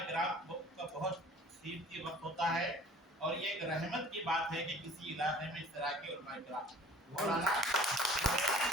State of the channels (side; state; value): both; normal; correlation 0.48